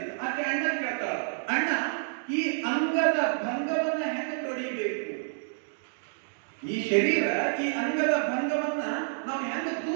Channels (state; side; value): silent; left; digital silence